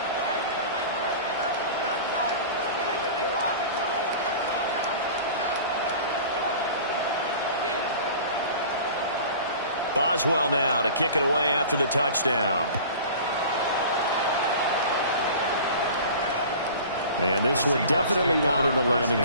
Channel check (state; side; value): inverted; both; correlation -0.40